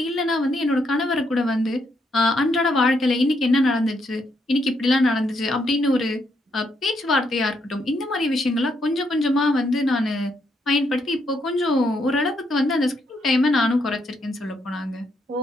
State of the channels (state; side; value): normal; both; correlation 0.76